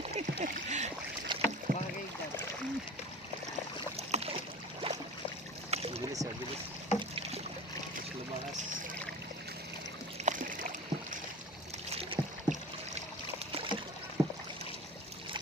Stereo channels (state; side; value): normal; both; correlation 0.35